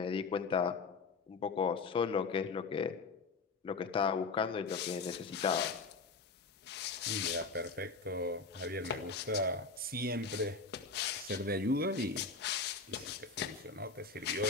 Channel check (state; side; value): quieter; right; 4.4 dB